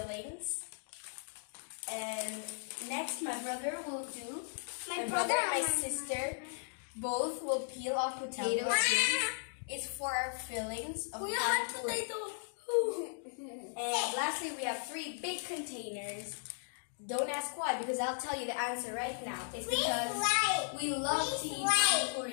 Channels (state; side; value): silent; right; digital silence